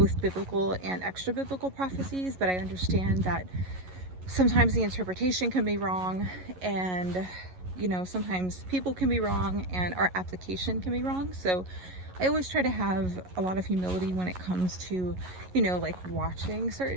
biblical and extra biblical prophecies, but I understand that sometimes the interpretation can be wrong, and you know, sometimes people can be wrong and our application can be wrong. So I always try to have a lot of humility when it comes to, you know, like watching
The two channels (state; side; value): late; left; 11 ms